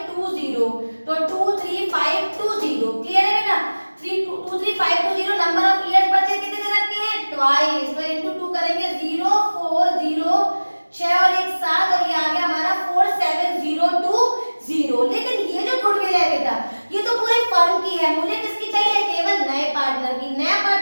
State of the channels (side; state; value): both; inverted; correlation -1.00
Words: तो 23520। क्लियर है बेटा। 23520 नंबर ऑफ इयर्स बचे कितने दे रखे हैं, ट्वाइस, तो इनटू 2 करेंगे 040 6 और 1 7 और ये आ गया हमारा 47020। लेकिन ये जो गुडविल है बेटा ये तो पूरे फर्म की है, मुझे किसकी चाहिए, केवल नए पार्टनर की। नया